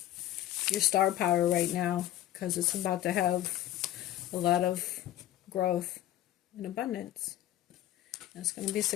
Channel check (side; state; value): right; quieter; 13.3 dB